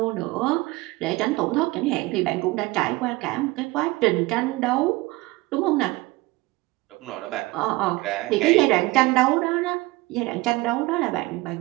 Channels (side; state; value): left; quieter; 21.3 dB